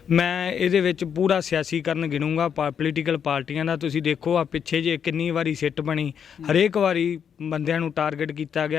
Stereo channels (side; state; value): right; quieter; 7.7 dB